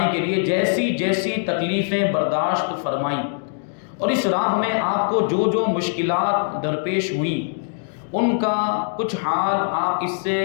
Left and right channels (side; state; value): right; silent; digital silence